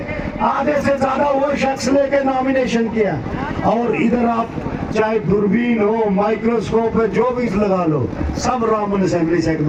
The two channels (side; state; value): both; identical; correlation 1.00